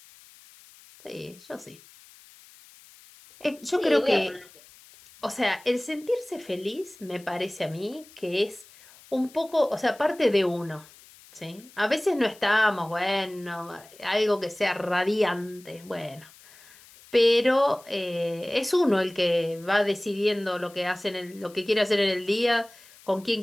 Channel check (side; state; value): left; noise; hiss, 24 dB below the sound